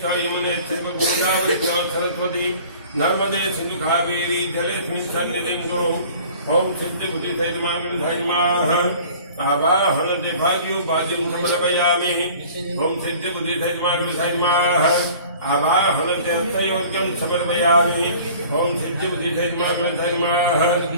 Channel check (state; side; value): inverted; both; correlation -0.47